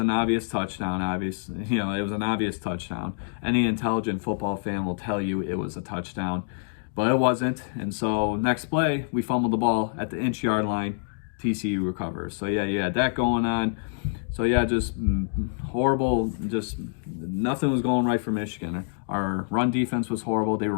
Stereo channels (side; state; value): right; silent; digital silence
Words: obvious touchdown, it was an obvious touchdown. Any intelligent football fan will tell you it was a touchdown, but it wasn't. And so next play, we fumbled the ball at the inch-yard line. TCU recovers. So yeah, you had that going on. So yeah, just horrible. Just nothing was going right for Michigan. Our run defense was horrible. They were